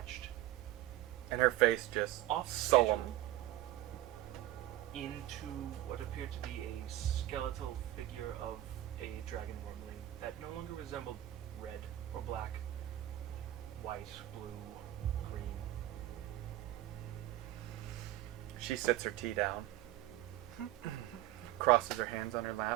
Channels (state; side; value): quieter; left; 14.9 dB